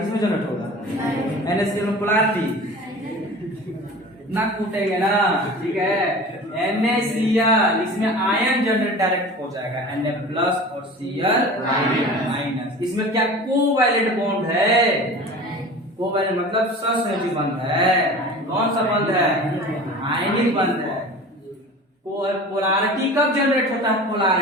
में जनरेट होगा, NaCl में पोलैरिटी ना कूटेंगे ना। ठीक है, NaCl इसमें आयन जनरेट डायरेक्ट हो जाएगा, Na प्लस और Cl माइनस। इसमें क्या कोवैलेंट बॉन्ड है, कोवैलेंट मतलब सहसंयोजी बंध है। कौन सा बंध है, आयनिक बंध है। पोलैरिटी कब जनरेट होता है,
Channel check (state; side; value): normal; both; correlation 0.38